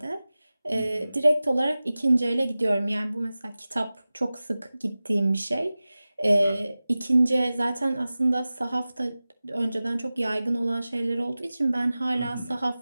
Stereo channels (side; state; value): both; inverted; correlation -0.97